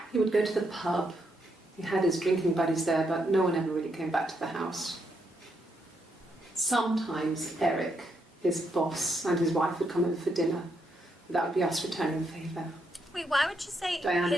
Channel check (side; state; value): both; normal; correlation 0.78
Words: He would go to the pub. He had his drinking buddies there, but no one ever really came back to the house. Sometimes Eric, his boss, and his wife would come over for dinner. That would be us returning the favour. Wait, why would you say Diane